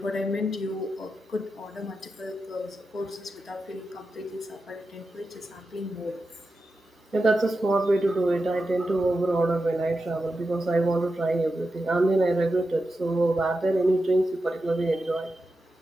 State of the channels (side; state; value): both; normal; correlation 0.90